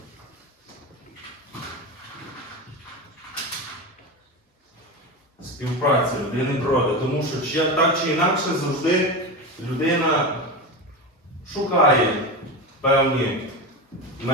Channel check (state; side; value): normal; both; correlation 0.21